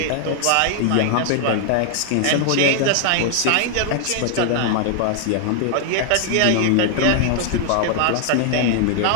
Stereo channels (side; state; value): both; different; correlation 0.00